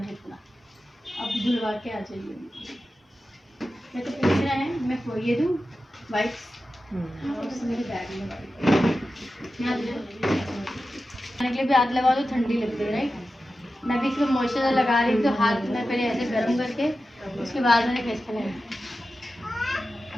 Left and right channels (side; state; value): both; normal; correlation 0.93